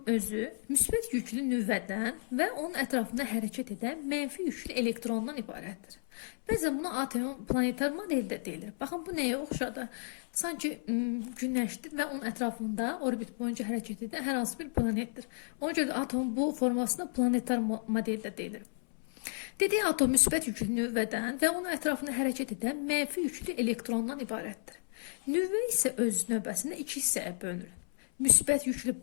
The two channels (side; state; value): right; silent; 56 dB below the other